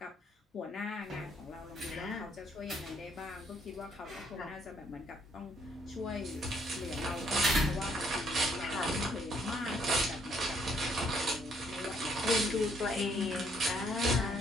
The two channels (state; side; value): normal; both; correlation 0.68